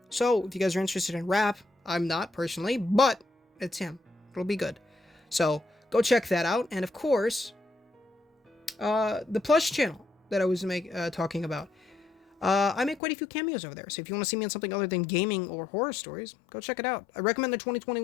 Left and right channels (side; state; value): right; drops out; at 13.0 s